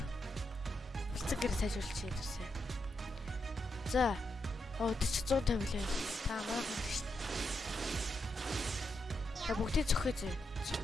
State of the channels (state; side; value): normal; both; correlation 0.83